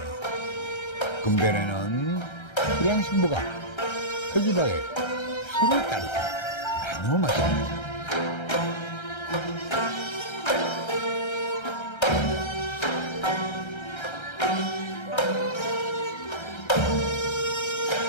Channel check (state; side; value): late; right; 1.3 ms